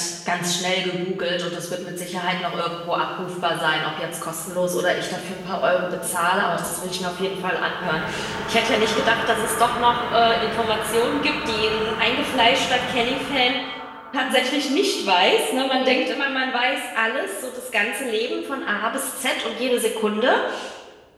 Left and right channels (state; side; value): identical; both; correlation 1.00